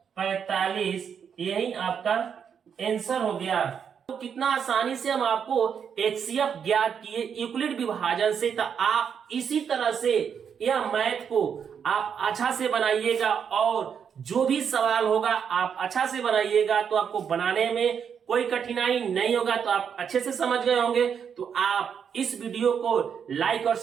45, यही आपका आंसर हो गया। तो कितना आसानी से हम आपको एचसीएफ ज्ञात किए यूक्लिड विभाजन से। तो आप इसी तरह से यह मैथ को आप अच्छा से बनाइएगा, और जो भी सवाल होगा आप अच्छा से बनाइएगा, तो आपको बनाने में कोई कठिनाई नहीं होगा। तो आप अच्छे से समझ गए होंगे। तो आप इस वीडियो को लाइक और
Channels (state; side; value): quieter; left; 7.4 dB